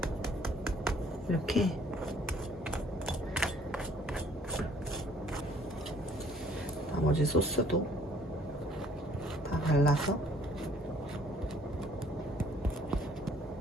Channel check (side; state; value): both; normal; correlation 0.60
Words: 이렇게 나머지 소스도 다 발라서